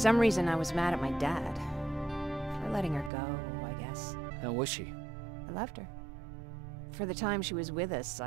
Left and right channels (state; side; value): drops out; left; at 3.1 s